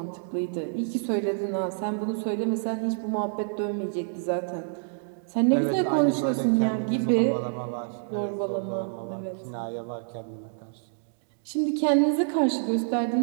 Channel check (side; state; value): left; silent; digital silence